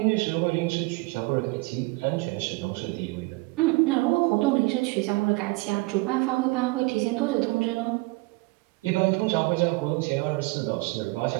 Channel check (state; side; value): quieter; left; 24.6 dB